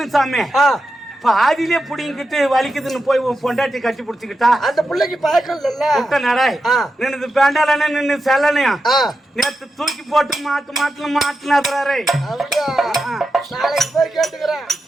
சாமி. பாதியிலே புடிங்கிட்டு வலிக்குதுன்னு போய் உன் பொண்டாட்டி கட்டி புடிச்சுக்கிட்டா அந்த பிள்ளைக்கு பழக்கம் இல்ல. நடாய் நின்று பேண்டாலன்னு நின்று செல்லனையா நேத்து தூக்கி போட்டு மாட்டுல மாட்டுனாரு. நாளைக்கு போய் கேட்டுக்கிறேன்.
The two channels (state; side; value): normal; both; correlation 0.89